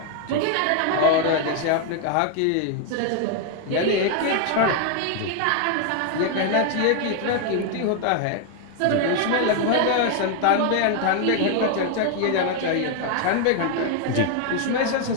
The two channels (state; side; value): different; both; correlation 0.00